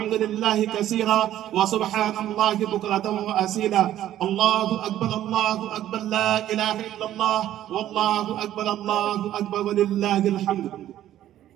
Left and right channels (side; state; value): left; quieter; 12.5 dB